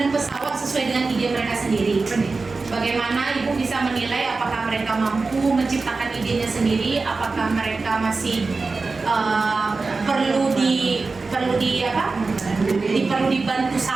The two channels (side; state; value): left; quieter; 4.0 dB